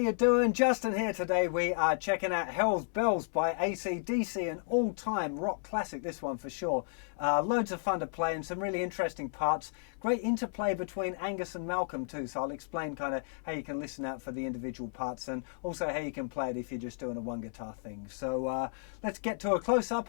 doing? Justin here. Today we are checking out Hell's Bells by AC/DC, an all-time rock classic, this one for sure. Loads of fun to play and some really interesting parts. Great interplay between Angus and Malcolm too, so I'll explain kind of how you can listen out for the individual parts and also how you can play it if you're just doing a one guitar thing. So let's get to a close-up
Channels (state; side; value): silent; right; digital silence